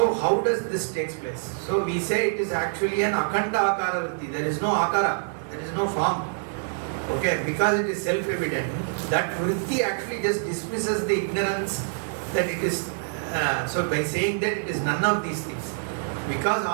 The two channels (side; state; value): left; silent; digital silence